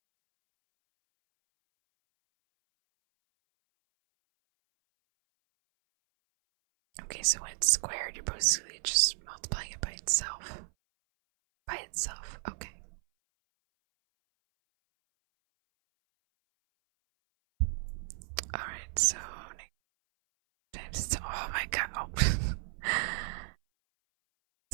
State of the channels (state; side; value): silent; left; 55 dB below the other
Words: Okay, so when it's squared, you're basically just multiplying it by itself. By itself, okay. Alright, so times, oh my god, oh.